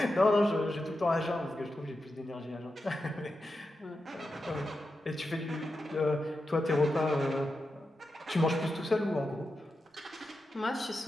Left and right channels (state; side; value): normal; both; correlation 0.89